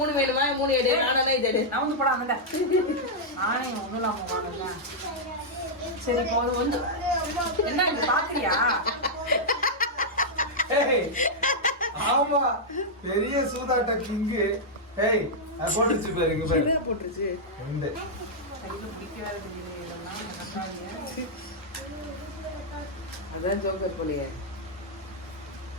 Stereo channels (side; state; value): both; normal; correlation -0.07